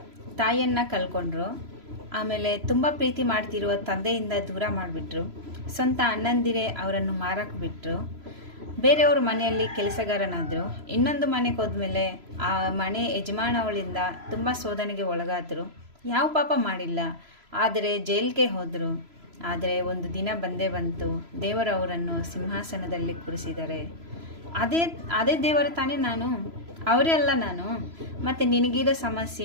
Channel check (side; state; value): left; late; 3.0 ms